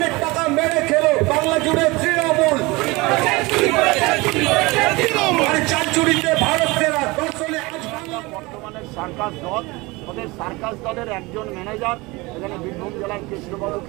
টাকা মেরে খেলো, বাংলা জুড়ে তৃণমূল। চার চুরিতে ভারত সেরা, দর্শনে আজ বাংলা। বর্তমানে সার্কাস দল, ওদের সার্কাস দলের একজন ম্যানেজার এখানে বীরভূম জেলার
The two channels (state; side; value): quieter; left; 23.4 dB